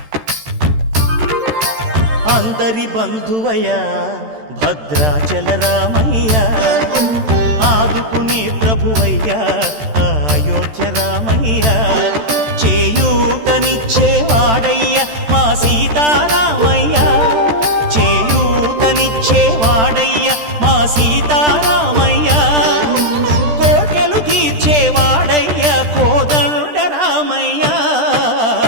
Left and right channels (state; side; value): late; left; 13 ms